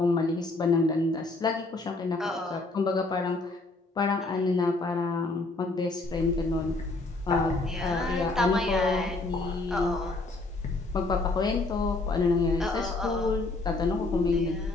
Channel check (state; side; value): quieter; right; 3.2 dB